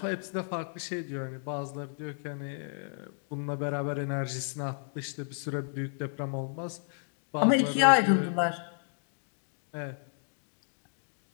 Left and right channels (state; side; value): silent; right; digital silence